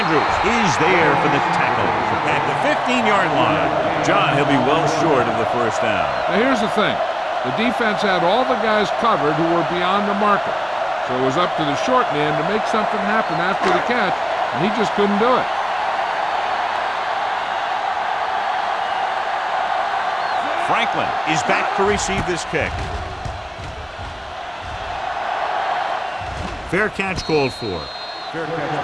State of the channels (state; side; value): identical; both; correlation 1.00